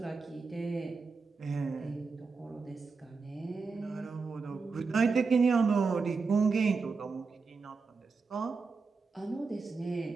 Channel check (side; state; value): left; quieter; 4.6 dB